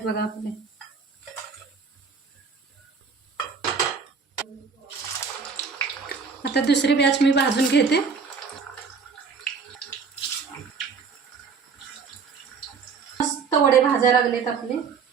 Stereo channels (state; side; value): quieter; left; 5.5 dB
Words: बघा आपले। आता दुसरी बॅच मी भाजून घेते। भाजायला लागलेत आपले